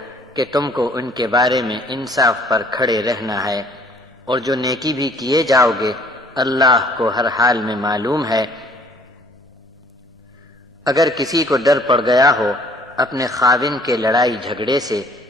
کہ تم کو ان کے بارے میں انصاف پر کھڑے رہنا ہے، اور جو نیکی بھی کیے جاؤ گے اللہ کو ہر حال میں معلوم ہے۔ اگر کسی کو ڈر پڑ گیا ہو اپنے خاوند کے لڑائی جھگڑے سے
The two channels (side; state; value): both; normal; correlation 0.57